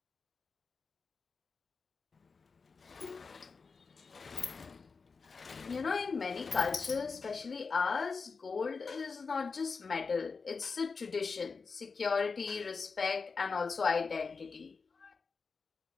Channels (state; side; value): quieter; right; 4.8 dB